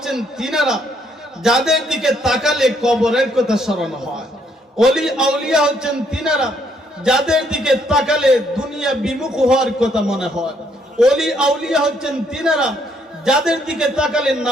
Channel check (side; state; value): both; normal; correlation 0.70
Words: তিনারা যাদের দিকে তাকালে কবরের কথা স্মরণ হয়। ওলি আউলিয়া হচ্ছেন তিনারা যাদের দিকে তাকালে দুনিয়া বিমুখ হওয়ার কথা মনে হয়। ওলি আউলিয়া হচ্ছেন তিনারা যাদের দিকে তাকালে